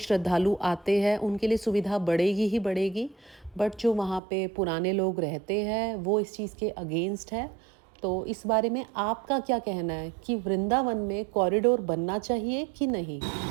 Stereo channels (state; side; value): drops out; left; at 4.2 s